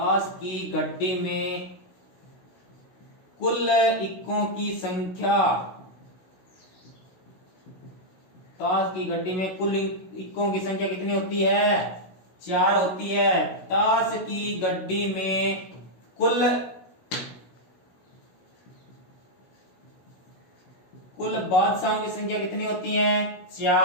की गड्डी में कुल इक्कों की संख्या, ताश की गड्डी में कुल इक्कों की संख्या कितनी होती है 4 होती है। ताश की गड्डी में कुल बादशाहों की संख्या कितनी होती है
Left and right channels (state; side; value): late; right; 16 ms